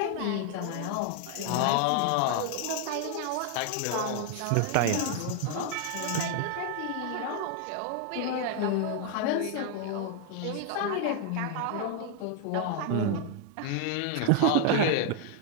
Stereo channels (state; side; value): different; both; correlation 0.00